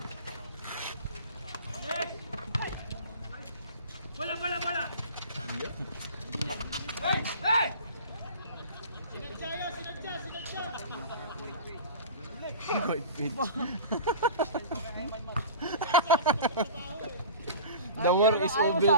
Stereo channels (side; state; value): both; inverted; correlation -0.37